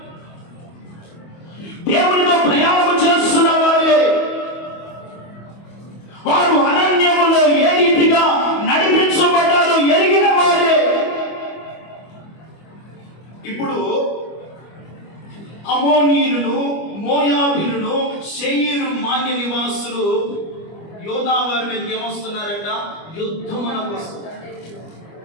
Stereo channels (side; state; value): right; late; 25 ms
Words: దేవునితో ప్రయాణం చేస్తున్న వారే, వారు అరణ్యములో ఏ రీతిగా నడిపించబడ్డారో ఎరిగిన వారే. ఇప్పుడు అమోనీయులను, మోయాబీయులను, శేయీరు మాన్య నివాసులు యోధా వారి మీదకి ఏమొస్తున్నారంట? యుద్ధమునకు వస్తున్నారు.